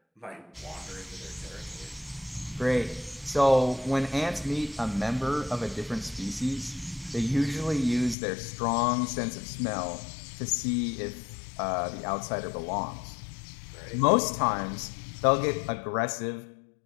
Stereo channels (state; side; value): drops out; right; at 8.2 s